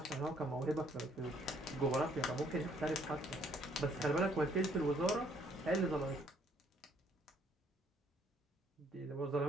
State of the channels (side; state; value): both; normal; correlation 0.65